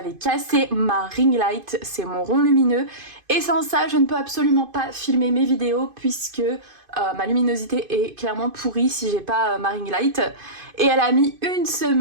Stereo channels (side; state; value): left; late; 2.5 ms